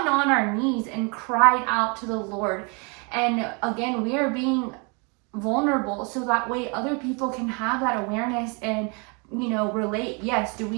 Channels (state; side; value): quieter; left; 32.7 dB